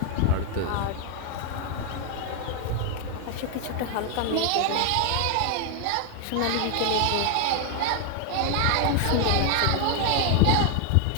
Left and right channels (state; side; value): different; both; correlation 0.01